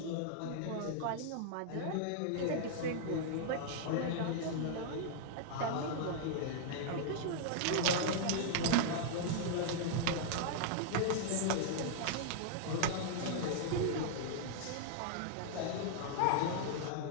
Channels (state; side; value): different; both; correlation -0.01